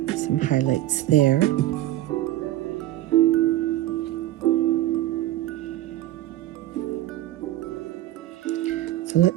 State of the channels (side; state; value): left; quieter; 14.7 dB